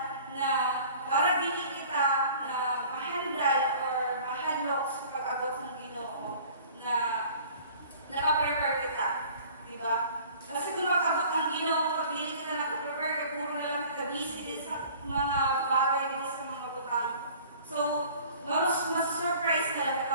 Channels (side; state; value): both; inverted; correlation -0.48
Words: na para dili kita na mahandal or mahanlok sa pag-abot ng Ginoo na nakaprepare kita. Diba? Kasi kung mag-abot ang Ginoo, pag dili kita nakaprepare, kaya puro na lang kita busy din sa mga bagay din sa mga butang. So, mas surprise na lang kita,